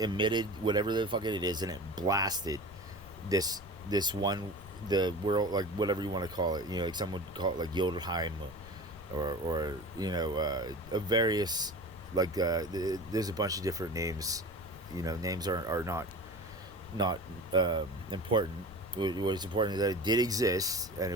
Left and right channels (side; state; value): left; noise; rumble, 19 dB below the sound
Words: whatever the fuck it is, and it blasted this one, the world, like, whatever you want to call it, like some would call it like Jotunheim, or a various, like, there's a bunch of different names. Names are not important. What is important is that it did exist, and